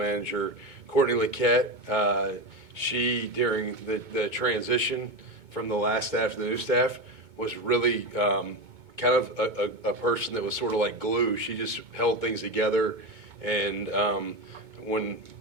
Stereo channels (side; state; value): left; late; 2.2 ms